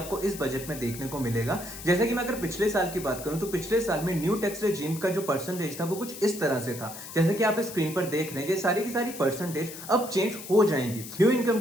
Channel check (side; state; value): left; noise; hiss, 12 dB below the sound